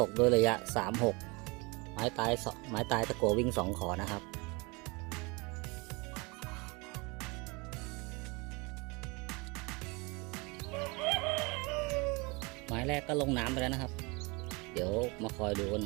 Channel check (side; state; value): left; quieter; 27.6 dB